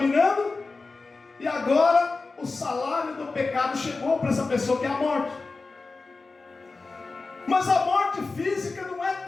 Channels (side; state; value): right; quieter; 3.8 dB